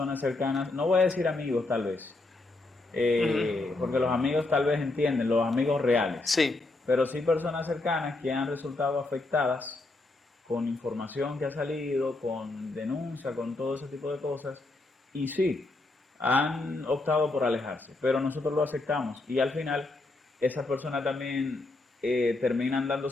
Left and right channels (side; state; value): right; quieter; 3.1 dB